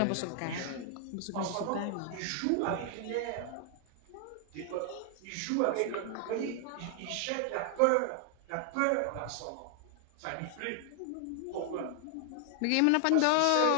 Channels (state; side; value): different; both; correlation 0.00